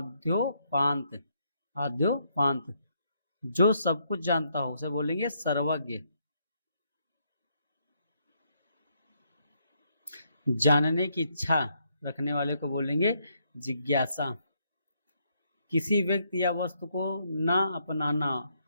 आद्योपांत। जो सब कुछ जानता हो उसे बोलेंगे सर्वज्ञ। जानने की इच्छा रखने वाले को बोलेंगे जिज्ञासा। किसी व्यक्ति या वस्तु को ना अपनाना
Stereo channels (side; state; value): both; inverted; correlation -0.75